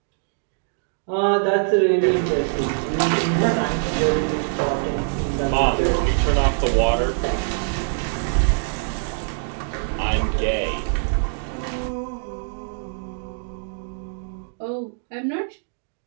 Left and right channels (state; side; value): silent; left; digital silence